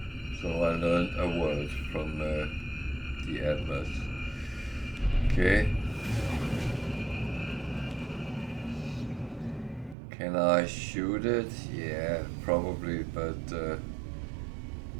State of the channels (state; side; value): drops out; left; at 10.0 s